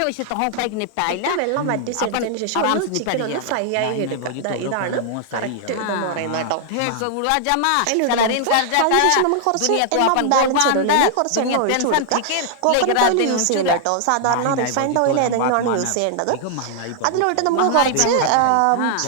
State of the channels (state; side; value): different; both; correlation 0.00